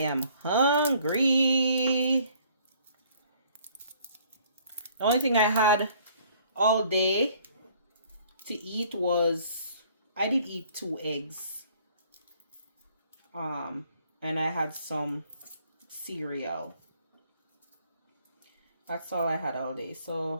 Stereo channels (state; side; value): inverted; both; correlation -0.59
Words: hungry. The only thing I had all day to eat was, I did eat 2 eggs. And I had some cereal. That's all I had all day.